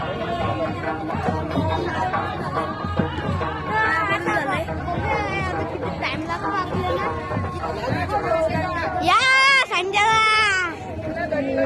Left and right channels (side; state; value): both; identical; correlation 1.00